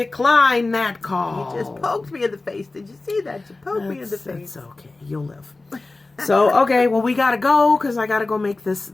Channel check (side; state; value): right; quieter; 3.3 dB